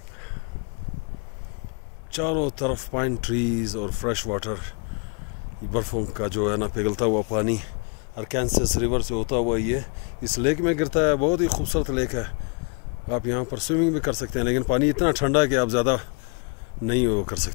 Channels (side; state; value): right; quieter; 36.0 dB